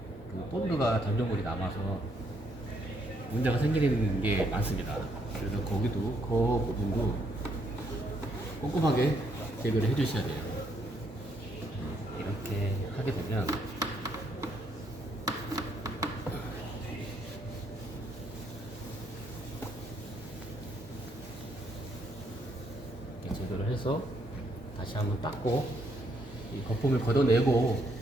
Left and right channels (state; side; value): normal; both; correlation 0.72